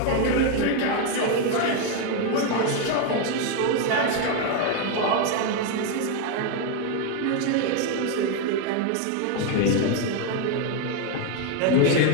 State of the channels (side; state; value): both; different; correlation 0.01